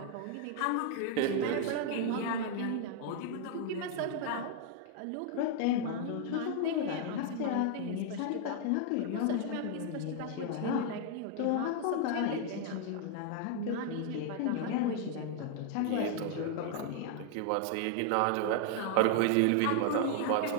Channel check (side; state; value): both; different; correlation 0.00